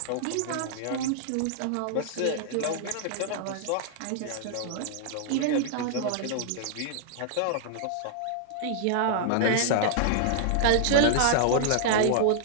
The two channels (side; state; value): both; different; correlation -0.01